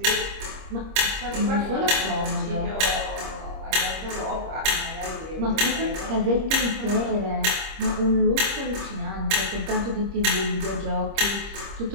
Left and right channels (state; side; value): late; left; 26 ms